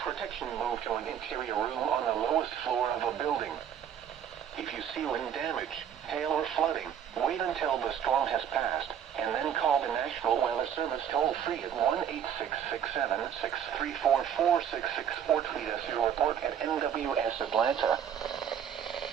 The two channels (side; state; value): left; quieter; 8.9 dB